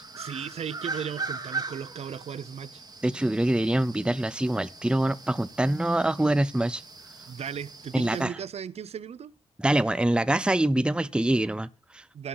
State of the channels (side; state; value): both; normal; correlation 0.90